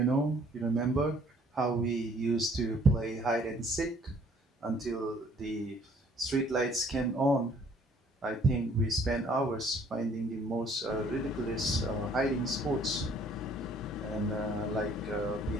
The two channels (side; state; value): both; normal; correlation 0.59